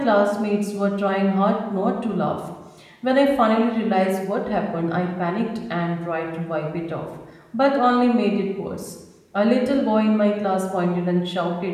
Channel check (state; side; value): identical; both; correlation 1.00